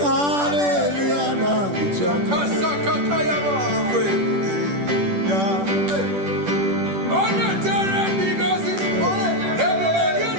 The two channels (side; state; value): left; late; 10 ms